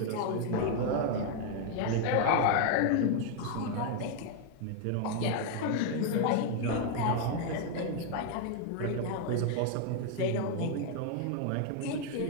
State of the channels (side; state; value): both; different; correlation 0.01